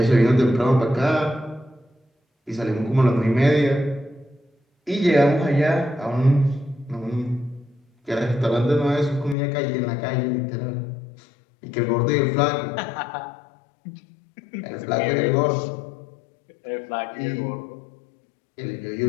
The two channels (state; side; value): drops out; right; at 9.3 s